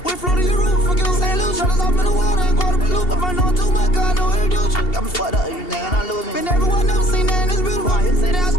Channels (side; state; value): right; late; 2.8 ms